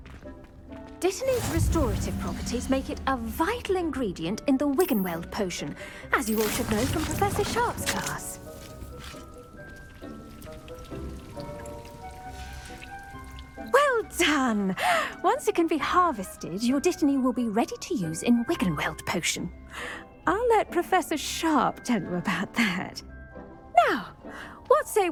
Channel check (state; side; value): identical; both; correlation 1.00